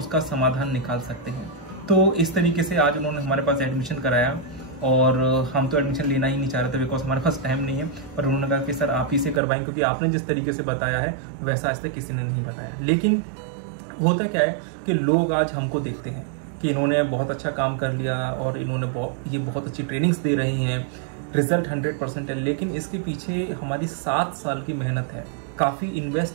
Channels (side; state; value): left; drops out; at 9.4 s